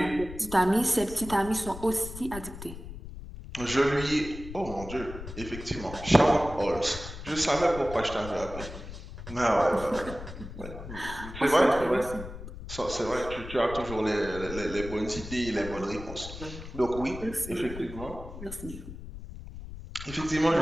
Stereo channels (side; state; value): left; noise; rumble, 11 dB below the sound